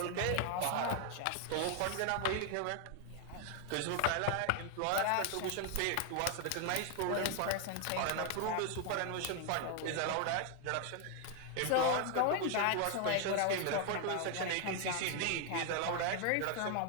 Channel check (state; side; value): different; both; correlation 0.00